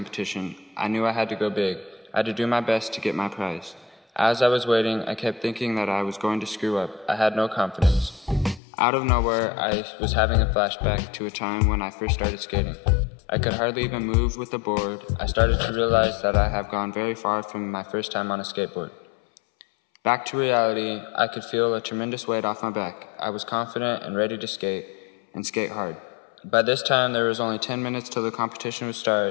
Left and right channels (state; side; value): drops out; right; at 8.6 s